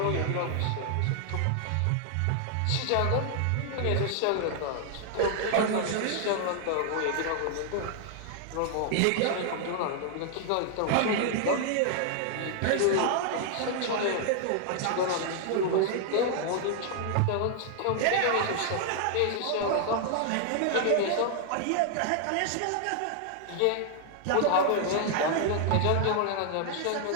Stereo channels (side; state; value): both; different; correlation 0.00